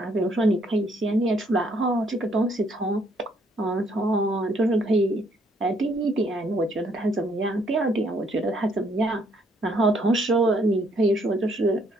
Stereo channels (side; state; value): both; normal; correlation 0.68